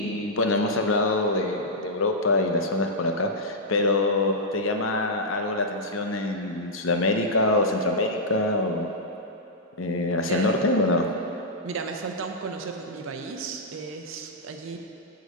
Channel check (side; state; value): both; normal; correlation -0.09